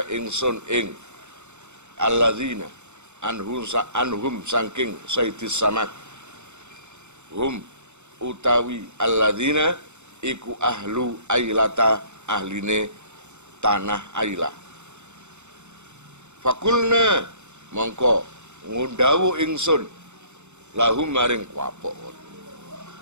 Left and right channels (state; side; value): late; left; 0.83 ms